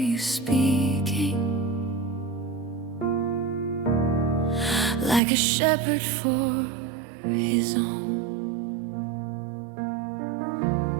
you speaking, like a shepherd for his own.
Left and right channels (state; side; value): drops out; left; at 5.2 s